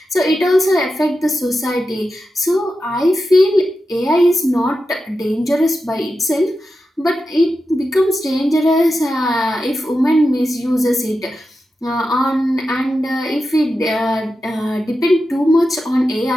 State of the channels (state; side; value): normal; both; correlation 0.90